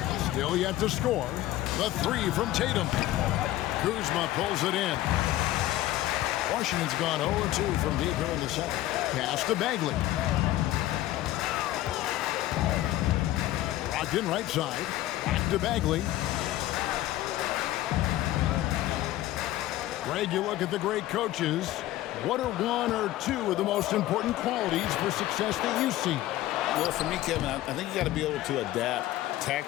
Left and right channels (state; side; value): quieter; right; 15.0 dB